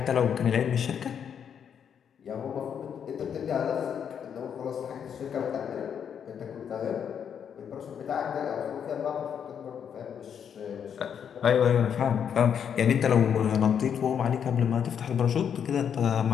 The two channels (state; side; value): quieter; right; 8.0 dB